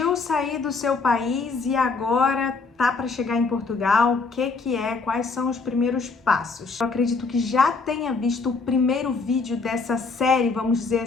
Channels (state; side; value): quieter; right; 4.3 dB